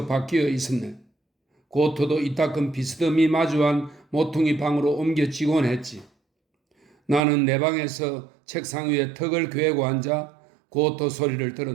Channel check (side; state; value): left; drops out; at 7.2 s